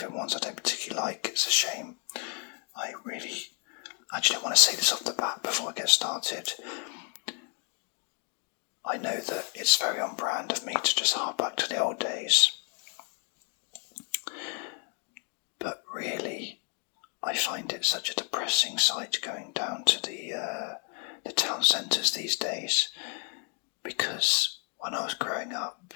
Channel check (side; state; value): right; quieter; 38.3 dB